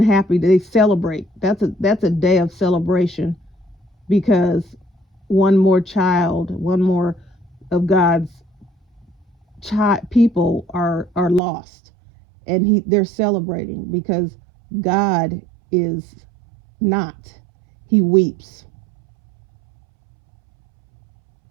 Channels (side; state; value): left; drops out; at 11.4 s